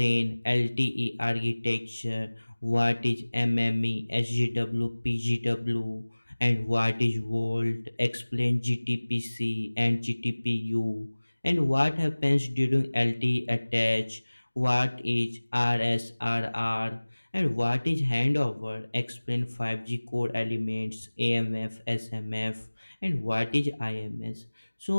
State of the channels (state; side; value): inverted; both; correlation -1.00